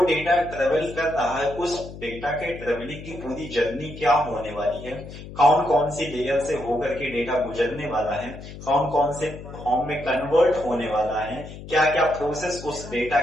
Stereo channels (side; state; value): left; noise; hum, 13 dB below the sound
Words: ट्रेवल कर रहा है उस डेटा के ट्रेवलिंग की पूरी जर्नी क्या होने वाली है, कौन कौन सी लेयर से होकर के डेटा गुजरने वाला है, कौन कौन से फॉर्म में कन्वर्ट होने वाला है, क्या क्या प्रोसेस उस डेटा